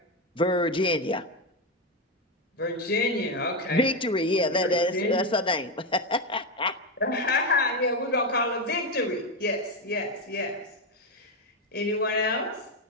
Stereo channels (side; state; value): both; normal; correlation 0.10